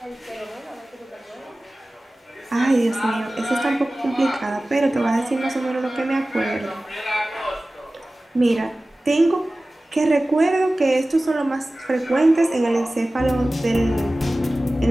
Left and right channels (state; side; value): normal; both; correlation 0.97